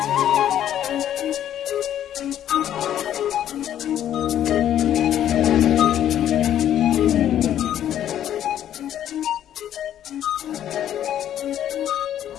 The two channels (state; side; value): quieter; right; 10.9 dB